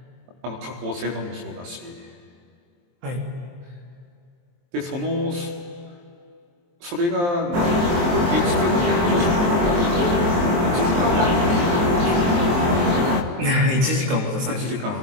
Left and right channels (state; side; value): late; left; 23 ms